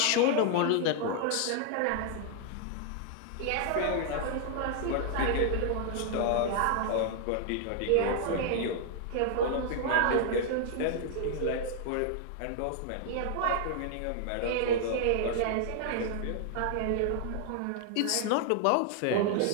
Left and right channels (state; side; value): different; both; correlation 0.00